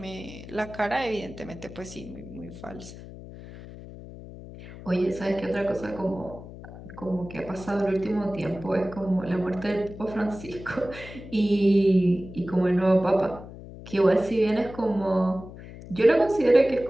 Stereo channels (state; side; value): noise; left; hum, 15 dB below the sound